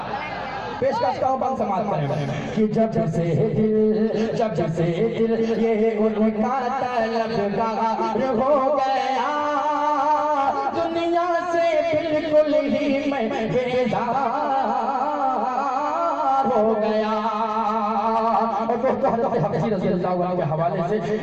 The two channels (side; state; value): both; identical; correlation 1.00